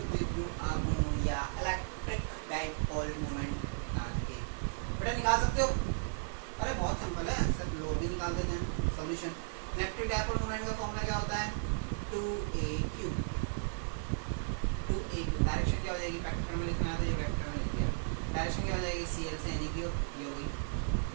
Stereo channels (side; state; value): left; silent; 54 dB below the other